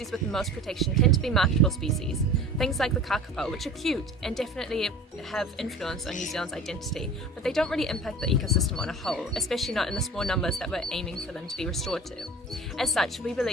with the most protection tend to be marketable species, things like the kakapo, which are cute and definitely have influence on New Zealand's identity, but they don't really impact the ecosystem on a whole, especially not in the small numbers that we're aiming for them to be restored to. As such, we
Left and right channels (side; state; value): both; normal; correlation 0.39